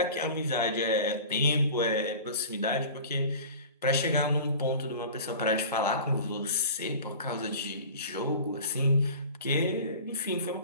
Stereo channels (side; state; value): both; inverted; correlation -0.39